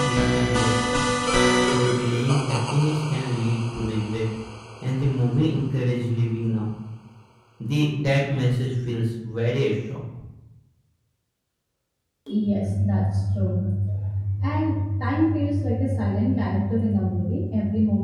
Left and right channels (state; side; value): identical; both; correlation 1.00